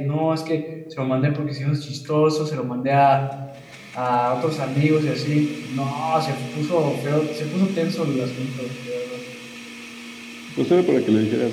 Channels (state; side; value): identical; both; correlation 1.00